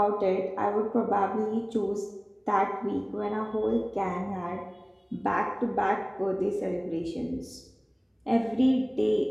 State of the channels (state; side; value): identical; both; correlation 1.00